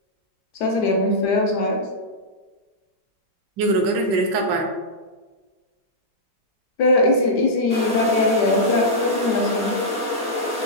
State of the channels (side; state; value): both; normal; correlation -0.11